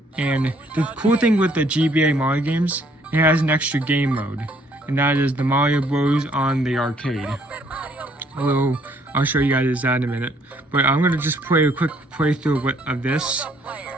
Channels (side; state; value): both; normal; correlation 0.65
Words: And the cool thing with the GBA Mario games, it has an extra game mode, and that is the Mario Bros. On the arcade. I'll show you guys that in a minute. But I'm gonna just play a quick playthrough of this.